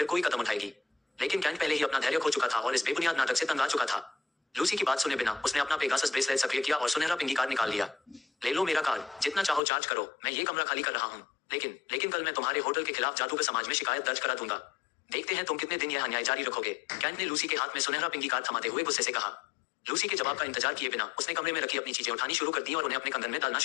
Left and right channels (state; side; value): drops out; right; at 9.6 s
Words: कोई कदम उठाएगी। लेकिन कैंट पहले ही अपना धैर्य खो चुका था और इस बेबुनियाद नाटक से तंग आ चुका था। लूसी की बात सुने बिना उसने अपना पेगासस ब्रेसलेट सक्रिय किया और सुनहरा पिंगी कार्ड निकाल लिया। ले लो मेरा कार्ड, जितना चाहो चार्ज करो, मैं ये कमरा खाली कर रहा हूँ। लेकिन कल मैं तुम्हारे होटल के खिलाफ जादूगर समाज में शिकायत दर्ज करा दूंगा। देखते हैं तुम कितने दिन यह अन्याय जारी रखोगे। कैंट ने लूसी के हाथ में सुनहरा पिंगी कार्ड थमाते हुए गुस्से से कहा। लूसी के जवाब का इंतजार किए बिना उसने कमरे में रखी अपनी चीजें उठानी शुरू कर दी और उन्हें अपने कंगन में डालना